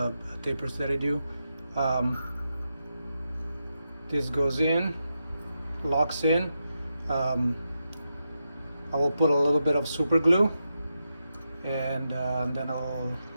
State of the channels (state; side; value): inverted; both; correlation -0.87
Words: tapers that I do. This goes in, locks in. I will put a little bit of super glue, and then I'll